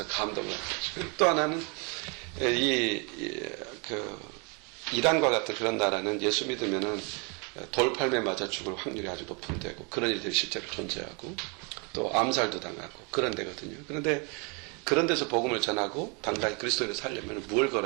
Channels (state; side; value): quieter; left; 32.8 dB